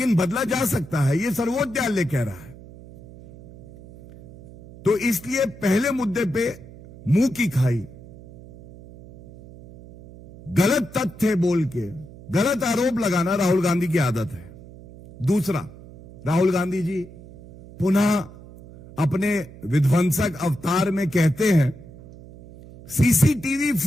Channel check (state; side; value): noise; right; hum, 19 dB below the sound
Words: बदला जा सकता है, यह सर्वोच्च न्यायालय कह रहा है। तो इसलिए पहले मुद्दे पे मुंह की खाई, गलत तथ्य बोल के गलत आरोप लगाना राहुल गांधी की आदत है। दूसरा, राहुल गांधी जी पुनः अपने विध्वंसक अवतार में कहते हैं सीसीटीवी